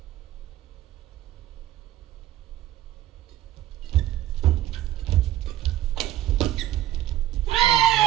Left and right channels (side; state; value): left; quieter; 14.0 dB